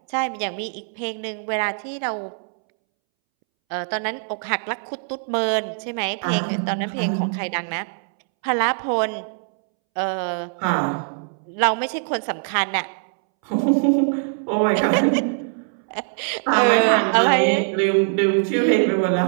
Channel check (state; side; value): silent; left; 64 dB below the other